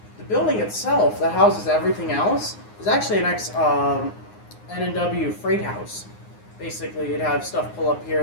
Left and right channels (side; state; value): right; late; 9.6 ms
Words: the building itself that houses everything else is actually an N&W freight house. Basically, you'd have stuff pull up here.